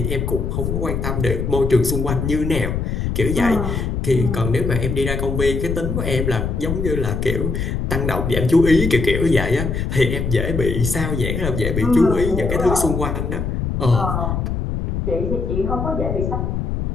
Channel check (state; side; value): noise; left; rumble, 2 dB below the sound